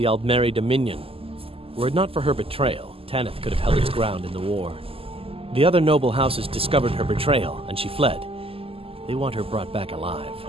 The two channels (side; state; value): left; late; 0.27 ms